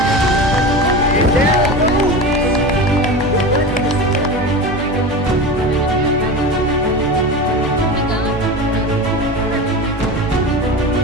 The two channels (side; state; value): both; normal; correlation 0.27